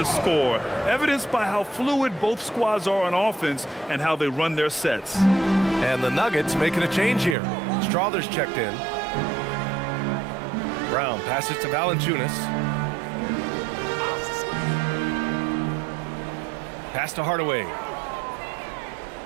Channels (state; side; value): drops out; left; at 7.4 s